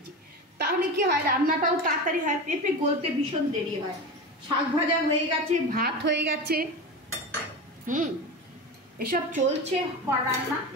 তাহলে কি হয়, রান্নাটাও তাড়াতাড়ি হয়, পেঁপে গলতে ভীষণ দেরি হয়। শাক ভাজা হয়ে গেছে, ভাত হয়ে গেছে, এসব চলছে রান্না।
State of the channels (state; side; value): normal; both; correlation 0.25